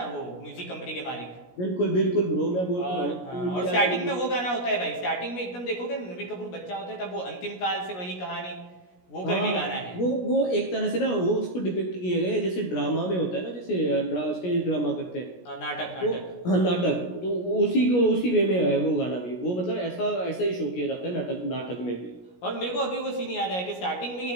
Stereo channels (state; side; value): late; right; 17 ms